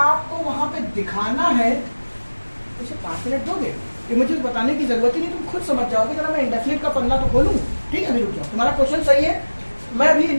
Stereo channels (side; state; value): both; inverted; correlation -1.00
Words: आपको वहां पे दिखाना है, इसे 5 मिनट दोगे, ये मुझे बताने की जरूरत ही नहीं, तुम खुद समझ जाओगे। जरा मैं इंडेफिनिट का पन्ना तो खोलूं, ठीक है, अभी रुक जाओ, तुम्हारा क्वेश्चन सही है, मैं अभी